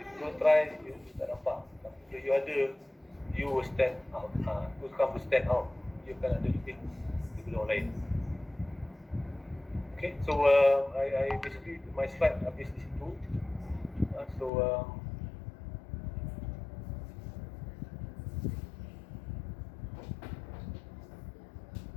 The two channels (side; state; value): right; drops out; at 14.5 s